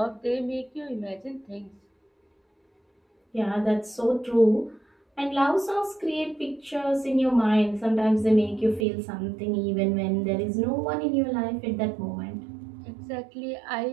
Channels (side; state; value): left; drops out; at 8.8 s